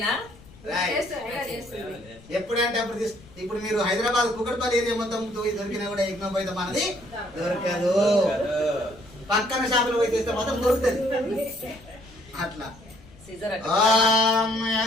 ఎప్పుడంటే అప్పుడు ఇప్పుడు మీరు హైదరాబాద్ కుకట్పల్లి ఏరియా మొత్తం దొరికినా కూడా ఎగ్నో పోయితే మనది దొరకదు. పక్కన షాపులు పోయి చేస్తే మాత్రం దొరుకుతుంది. అట్లా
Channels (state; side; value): noise; left; rumble, 23 dB below the sound